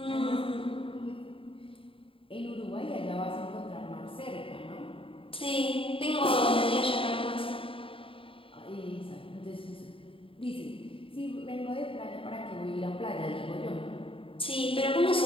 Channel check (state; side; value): late; right; 0.26 ms